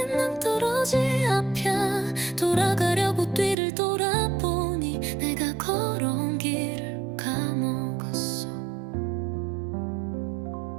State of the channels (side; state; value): left; drops out; at 3.6 s